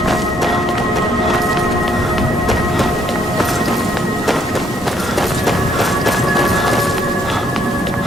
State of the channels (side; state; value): both; normal; correlation 0.68